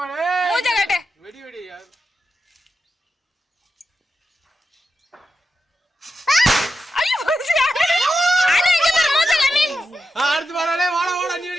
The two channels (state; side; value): normal; both; correlation 0.90